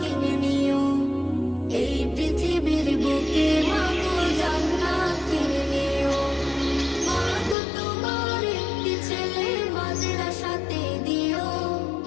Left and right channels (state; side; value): drops out; right; at 7.6 s